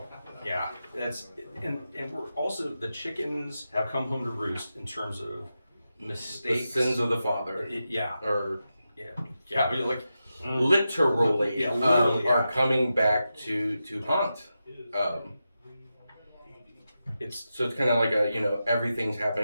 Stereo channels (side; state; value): both; inverted; correlation -0.90